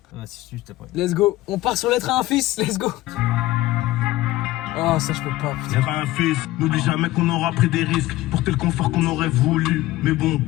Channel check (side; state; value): right; quieter; 17.1 dB